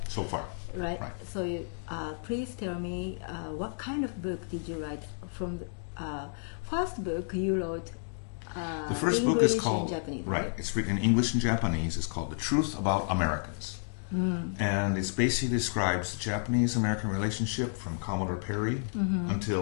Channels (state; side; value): silent; right; digital silence